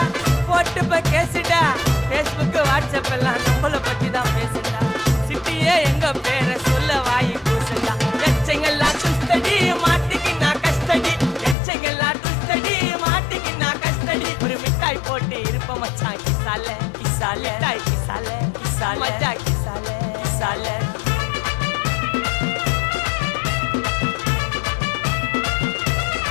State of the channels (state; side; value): drops out; right; at 11.6 s